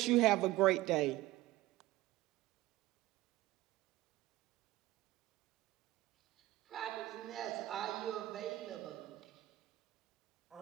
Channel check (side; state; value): left; quieter; 17.1 dB